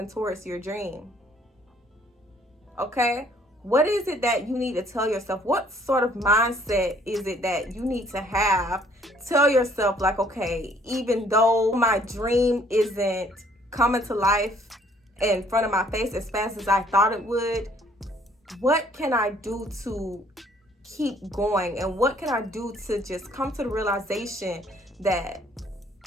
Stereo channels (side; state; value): both; normal; correlation 0.61